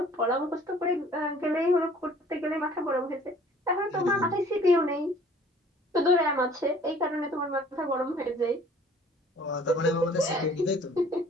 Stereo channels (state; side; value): normal; both; correlation 0.54